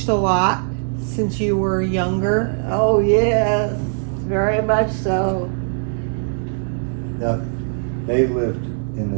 a lot since you were younger? Oh, yes. Very much so. Now, they lived in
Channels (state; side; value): silent; left; digital silence